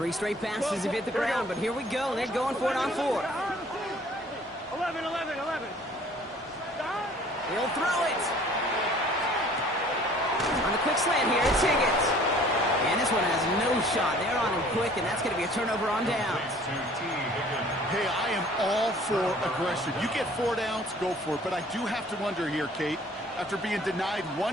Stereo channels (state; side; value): normal; both; correlation 0.53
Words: straight passes have hit the ground, but here we go. They're going for it on 4. 11. He'll throw it. On the quick slant here, it's Higgins. And this one has no shot. They're on him quick, and that's going to be a turnover on downs. Hey, I am all for aggression. You get 4 downs, go for it. But I do have to wonder here, Kate, after being denied